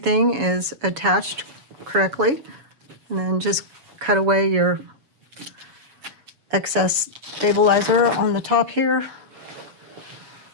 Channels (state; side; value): late; left; 7.1 ms